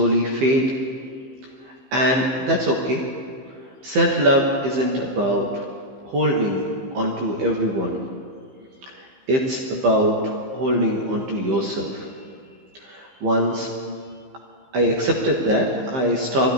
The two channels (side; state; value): left; late; 15 ms